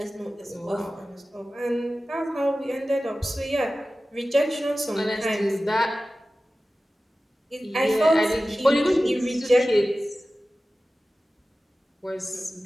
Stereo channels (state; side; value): normal; both; correlation 0.95